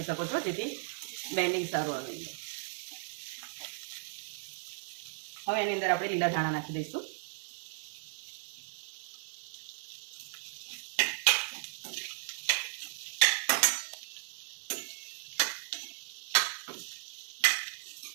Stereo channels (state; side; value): silent; left; digital silence